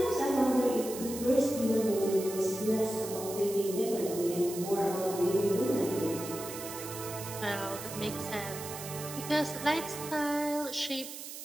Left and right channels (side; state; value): right; noise; hiss, 10 dB below the sound